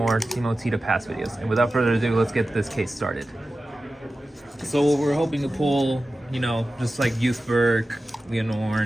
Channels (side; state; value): both; normal; correlation 0.94